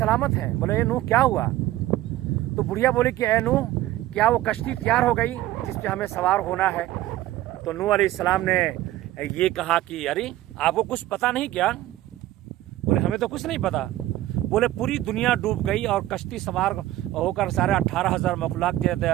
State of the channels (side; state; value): left; quieter; 15.1 dB